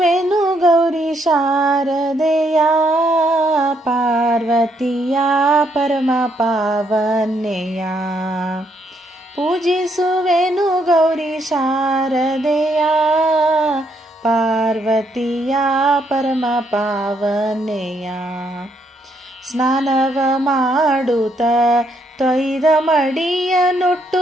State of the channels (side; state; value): both; normal; correlation 0.73